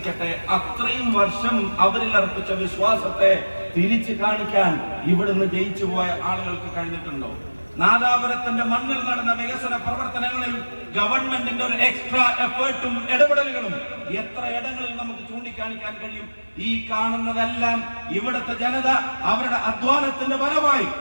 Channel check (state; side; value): inverted; both; correlation -1.00